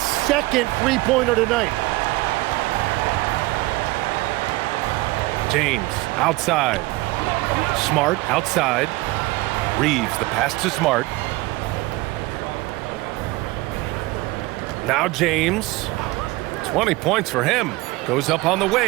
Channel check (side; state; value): left; quieter; 20.7 dB